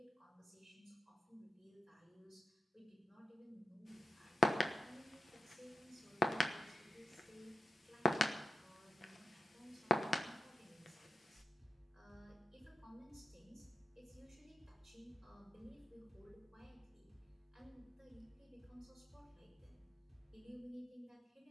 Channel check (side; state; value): both; normal; correlation 0.87